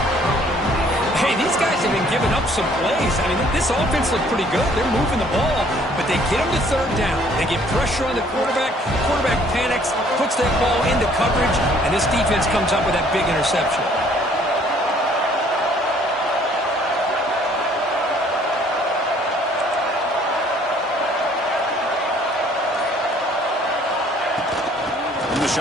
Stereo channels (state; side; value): normal; both; correlation 0.59